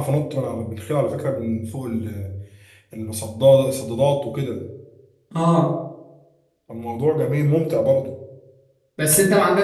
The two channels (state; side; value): identical; both; correlation 1.00